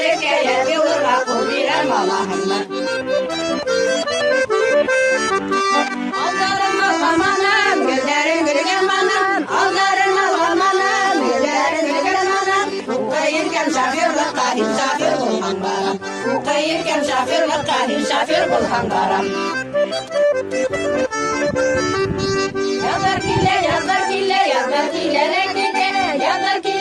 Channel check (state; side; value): identical; both; correlation 1.00